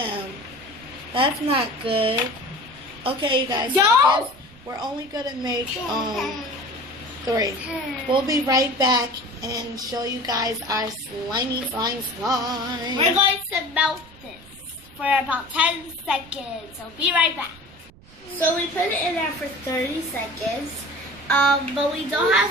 That's not good. Okay, you guys. So I guess we're only gonna make 3. We'll be right back and show you guys our slimy slime. We're going to melt this for about 10 seconds. So be right back. So we put it in there for 30 seconds. But we don't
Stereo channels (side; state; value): right; noise; rumble, 24 dB below the sound